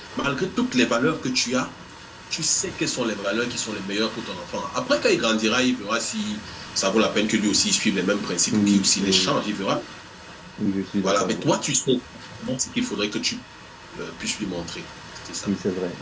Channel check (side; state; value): both; identical; correlation 1.00